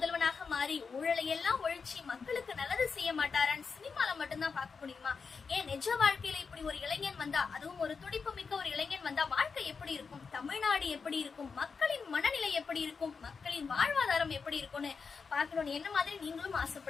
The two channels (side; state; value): right; quieter; 5.3 dB